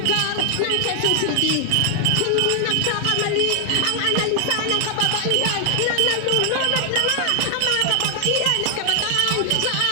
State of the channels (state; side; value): different; both; correlation 0.00